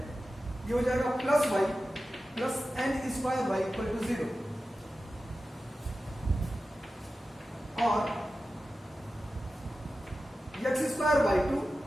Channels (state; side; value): normal; both; correlation 0.93